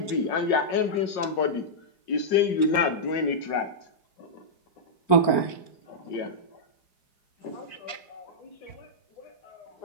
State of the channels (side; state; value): right; late; 4.4 ms